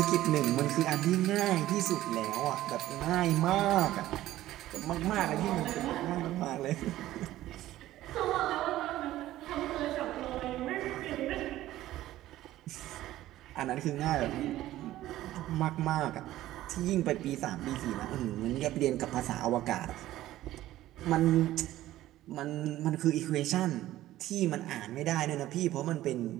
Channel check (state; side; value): quieter; left; 14.7 dB